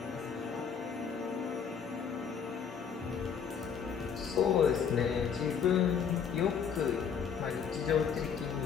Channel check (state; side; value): quieter; right; 7.0 dB